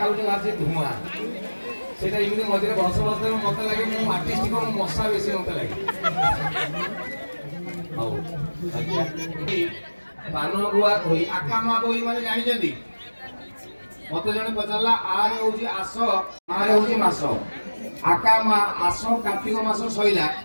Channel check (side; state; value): both; inverted; correlation -1.00